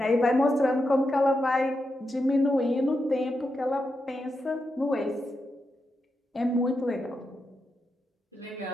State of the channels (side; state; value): both; normal; correlation 0.86